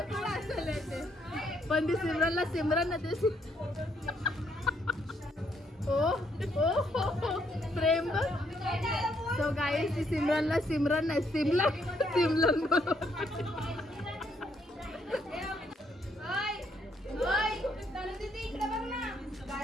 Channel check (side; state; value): both; normal; correlation 0.72